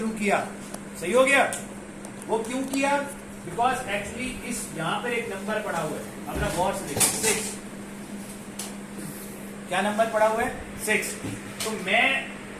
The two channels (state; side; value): identical; both; correlation 1.00